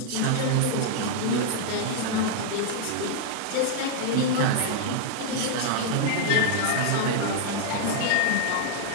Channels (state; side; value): different; both; correlation 0.00